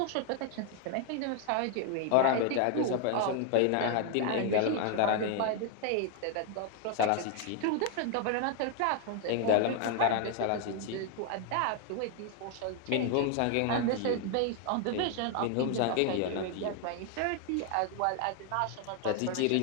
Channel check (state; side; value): different; both; correlation 0.00